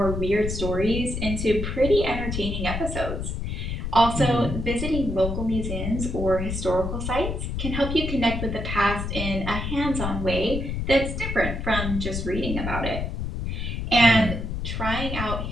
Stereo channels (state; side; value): noise; left; rumble, 4 dB below the sound